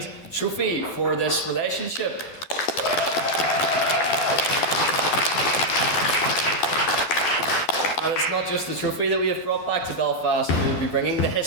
trophy for this relationship. And it's not just the trophy that we have brought back to Belfast, we will be bringing the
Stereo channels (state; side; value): late; right; 12 ms